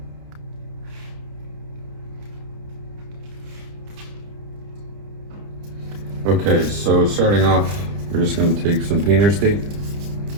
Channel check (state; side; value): late; left; 30 ms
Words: Okay, so starting off, we're just going to take some painter's tape.